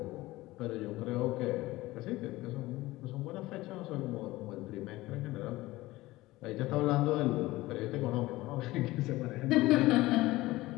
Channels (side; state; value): right; quieter; 18.5 dB